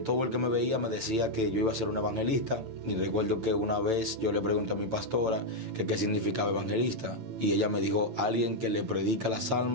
todo el que me veía me decía que yo iba a ser un evangelista. Y recuerdo que una vez yo le pregunté a mi pastora que qué significaba evangelista. Y ella me dijo, alguien que le predica las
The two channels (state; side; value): late; left; 9.0 ms